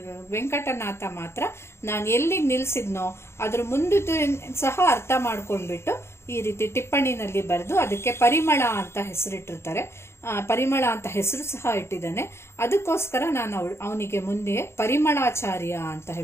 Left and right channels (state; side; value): late; right; 0.12 ms